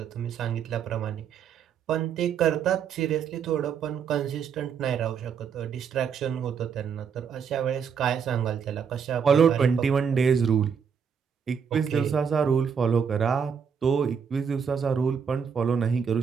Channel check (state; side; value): quieter; left; 6.9 dB